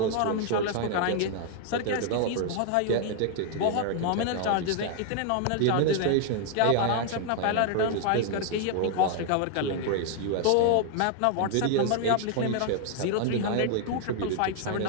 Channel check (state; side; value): different; both; correlation 0.00